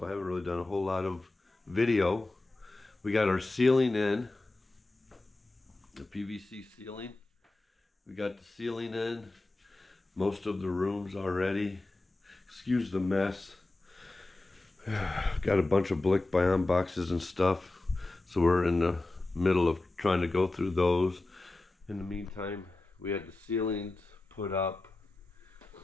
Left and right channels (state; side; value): quieter; right; 3.0 dB